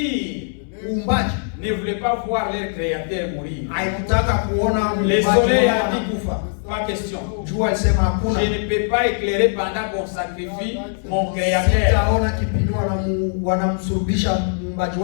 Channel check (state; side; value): silent; right; digital silence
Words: uumbaji ne voulait pas voir leur créateur mourir. haikutaka kuona Les muumbaji soleils wao a dit, anakufa. pas question. Jua alisema hakuna, Je ne peux pas éclairer pendant qu'on sacrifie mon créateur. sitaona kipindi wanamsurubisha muumbaji